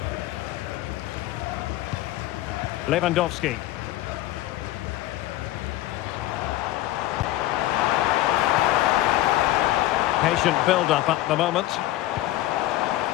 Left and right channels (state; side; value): quieter; right; 15.5 dB